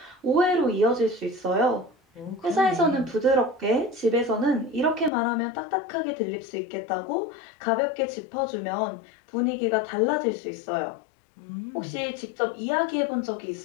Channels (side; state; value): right; drops out; at 5.1 s